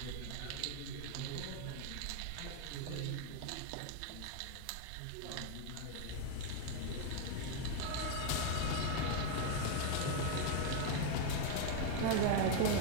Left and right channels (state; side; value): different; both; correlation 0.00